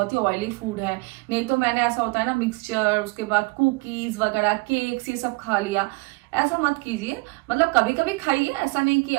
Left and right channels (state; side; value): quieter; left; 27.0 dB